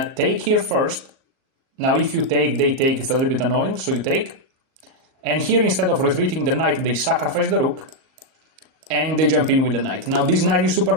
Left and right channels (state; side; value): late; left; 38 ms